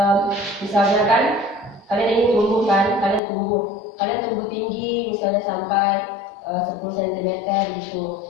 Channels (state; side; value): drops out; right; at 3.2 s